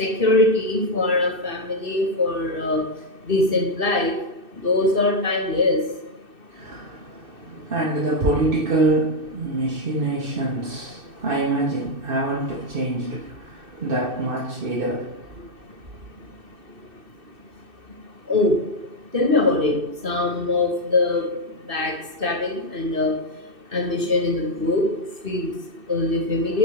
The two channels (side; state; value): left; late; 2.6 ms